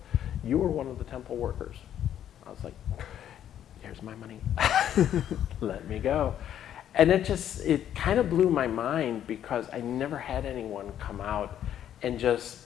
you were one of the temple workers." I was like, "Here's my money." Let me go. And it kind of blew my mind, because I never had anyone come out and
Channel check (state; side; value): quieter; right; 10.4 dB